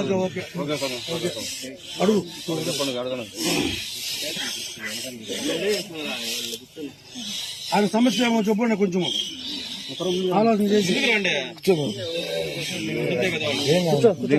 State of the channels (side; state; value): both; identical; correlation 1.00